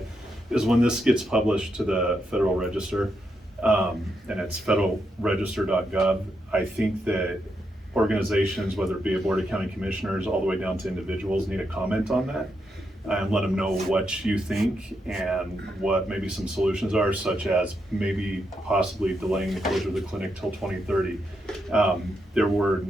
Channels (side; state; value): both; normal; correlation 0.82